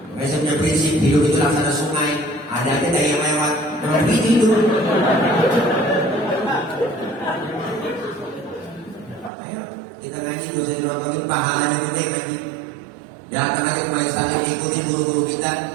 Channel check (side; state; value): left; drops out; at 9.3 s